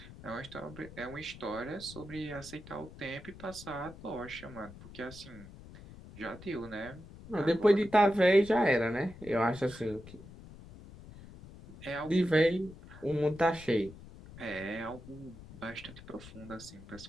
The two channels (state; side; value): noise; left; rumble, 17 dB below the sound